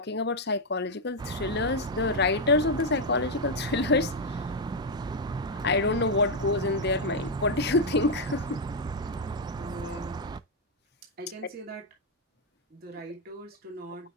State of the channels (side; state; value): both; normal; correlation 0.01